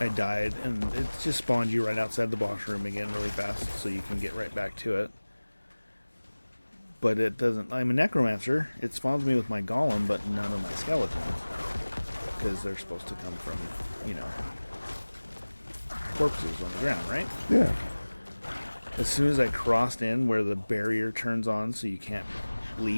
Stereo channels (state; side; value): inverted; both; correlation -1.00